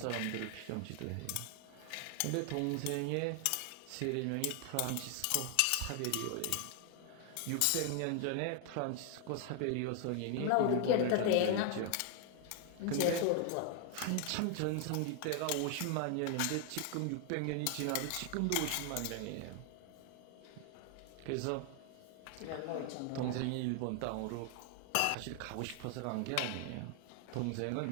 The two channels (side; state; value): both; different; correlation 0.00